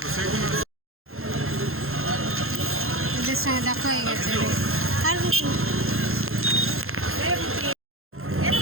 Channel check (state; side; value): late; left; 0.61 ms